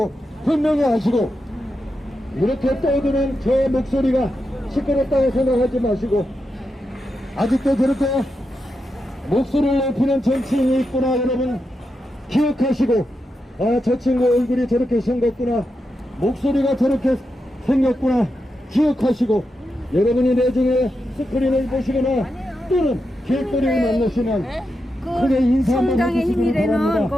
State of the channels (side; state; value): both; normal; correlation 0.87